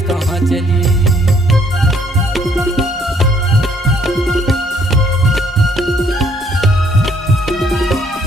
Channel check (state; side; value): normal; both; correlation 0.66